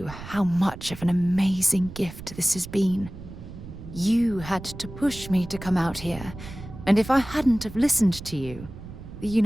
how much of an amazing gift this has been. You had to push me to come out here, and if I hadn't have listened to you, the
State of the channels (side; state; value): right; noise; rumble, 13 dB below the sound